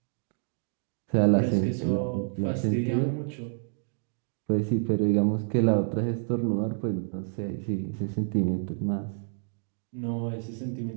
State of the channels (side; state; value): left; silent; digital silence